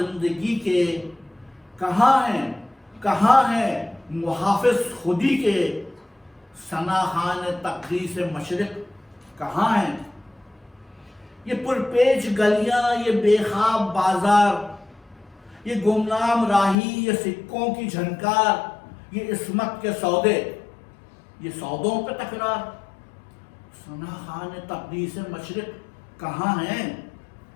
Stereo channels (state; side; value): drops out; right; at 16.8 s